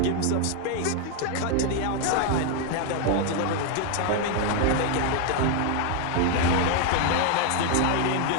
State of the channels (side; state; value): both; different; correlation 0.01